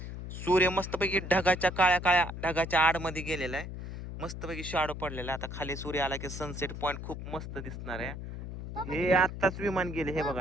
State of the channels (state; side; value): noise; left; hum, 8 dB below the sound